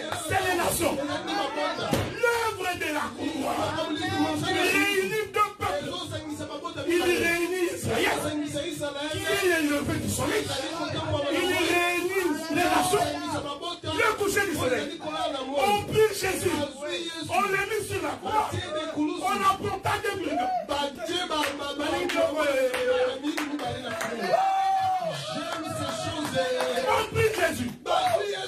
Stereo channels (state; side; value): identical; both; correlation 1.00